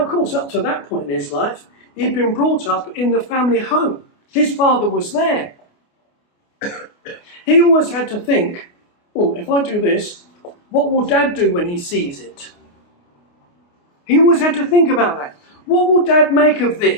of course, up to that point in his life, he'd been brought up in the family home. His father was there. He always had to think, oh, if I do this, what will Dad do when he sees it? He always had to think about that. What will Dad make of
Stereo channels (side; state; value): right; late; 29 ms